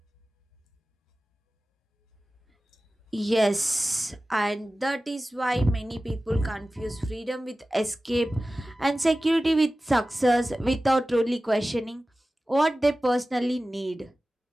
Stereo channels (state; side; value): normal; both; correlation 0.96